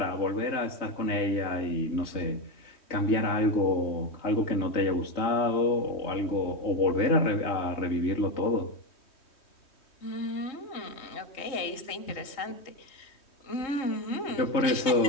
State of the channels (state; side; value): late; right; 3.1 ms